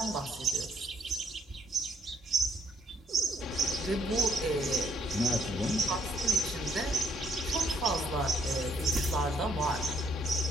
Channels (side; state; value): both; normal; correlation 0.68